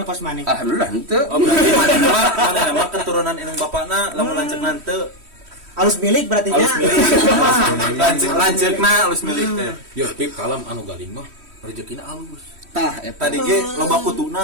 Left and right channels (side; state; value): left; late; 3.1 ms